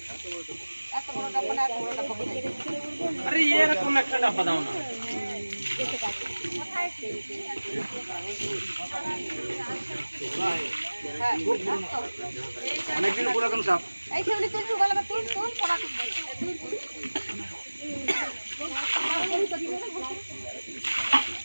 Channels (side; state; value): both; inverted; correlation -1.00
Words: আরে এরকম একটা ডাব্বা দাও না। অনেকদিন পুরাতন সাপ।